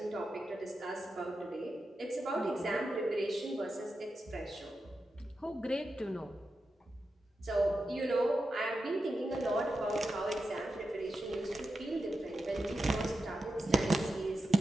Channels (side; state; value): both; normal; correlation 0.90